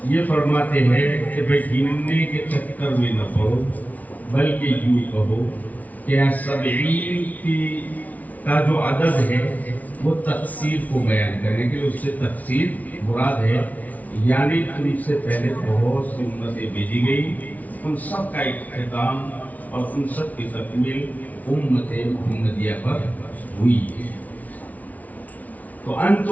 یہ فرماتے ہیں کہ بھئی گننے کے چکر میں نہ پڑو، بلکہ یوں کہو کہ 70 کا جو عدد ہے وہ تقصیر کو بیان کرنے کے لیے، اس سے تقصیر مراد ہے، یعنی تم سے پہلے بہت سی امتیں بھیجی گئی، ان سب کا اختتام اور ان سب کی تکمیل امت محمدیہ پر ہوئی ہے۔ تو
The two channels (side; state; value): right; late; 0.073 ms